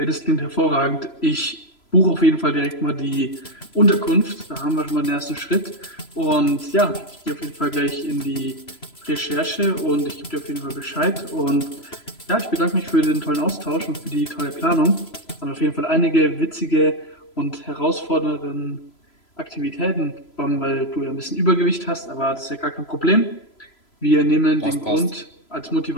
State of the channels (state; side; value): late; right; 3.0 ms